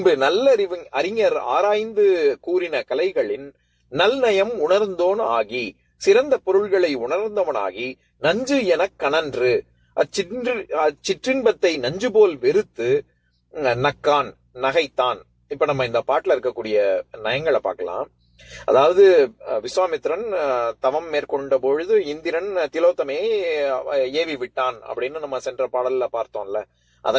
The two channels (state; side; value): identical; both; correlation 1.00